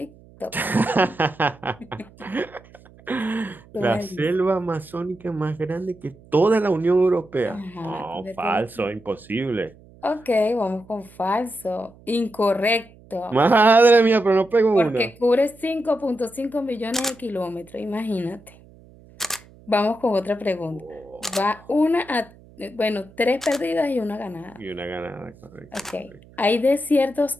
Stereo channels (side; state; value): right; noise; hum, 24 dB below the sound